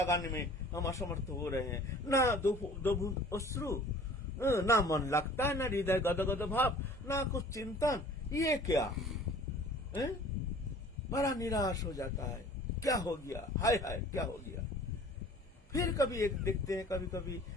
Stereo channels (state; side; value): normal; both; correlation 0.48